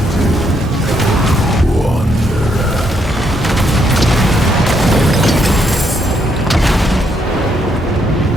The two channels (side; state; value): both; normal; correlation 0.74